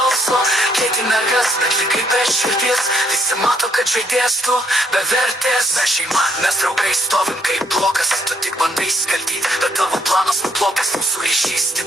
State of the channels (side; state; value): both; normal; correlation 0.70